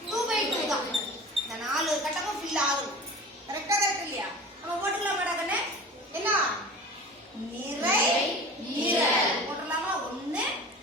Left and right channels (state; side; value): normal; both; correlation 0.37